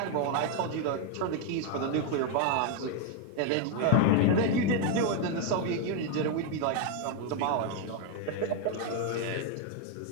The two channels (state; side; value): different; both; correlation 0.01